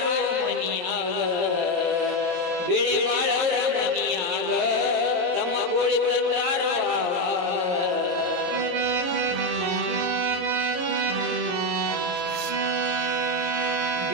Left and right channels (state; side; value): late; left; 23 ms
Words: ಮನಿಯಾಗ ಬಿಳೆಬಾಳವ್ರ ಮನಿಯಾಗ ತಮ್ಮ ಗೂಳಿ ತಂದಾರೋ